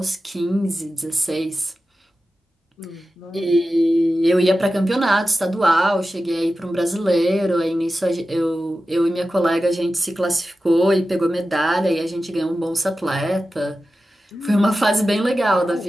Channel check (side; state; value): both; normal; correlation 0.93